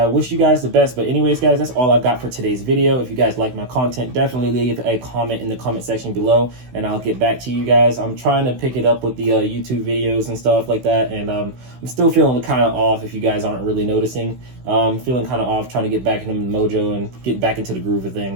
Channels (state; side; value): late; left; 16 ms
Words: wish you guys the best. But anyways, guys, that's all I've got for today's video. If you guys like my content, definitely leave a comment in the comment section below, and I'll get back to you guys. I'm trying to pick it up with the YouTube videos and stuff like that, and I'm still feeling kind of off, if you guys aren't really noticing. Feeling kind of off, trying to get back into the mojo and get back into the groove of